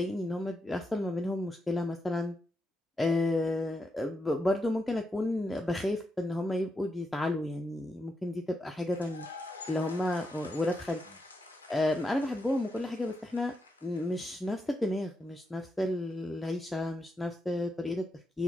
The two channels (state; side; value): normal; both; correlation 0.84